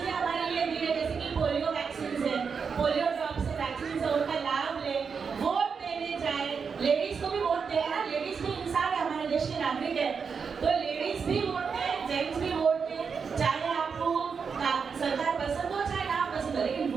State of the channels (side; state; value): left; quieter; 5.9 dB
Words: हमारे लिए दी है, जैसे कि पोलियो वैक्सीन है, पोलियो ड्रॉप्स है, वैक्सीन है, उनका लाभ ले, वोट देने जाए। लेडीज को भी वोट दें ना, लेडीज भी इंसान है, हमारे देश के नागरिक है, तो लेडीज भी वोट दें, जेंट्स भी वोट दें। चाहे आपको सरकार पसंद हो चाहे ना पसंद हो, लेकिन